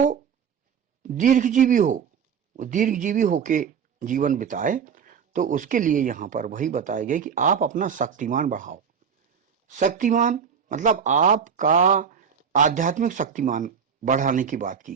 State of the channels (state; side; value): quieter; left; 7.1 dB